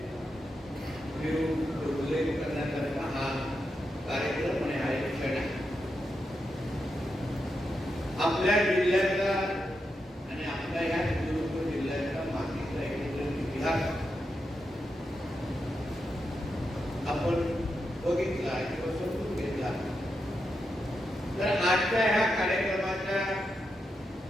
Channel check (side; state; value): both; normal; correlation 0.86